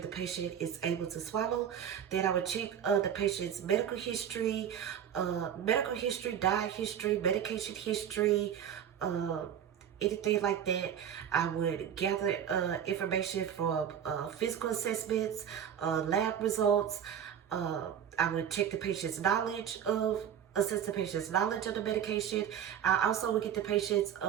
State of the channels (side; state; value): left; quieter; 9.1 dB